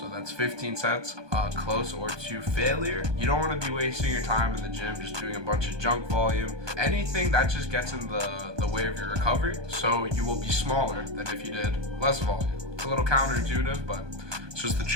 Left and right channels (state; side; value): late; left; 1.2 ms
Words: that's 15 sets close or to failure. You don't want to be wasting your time in the gym just doing a bunch of junk volume. Anything that just gets in the way of your recovery, so you will be smaller than if you did less volume. It's a little counterintuitive, but it's just the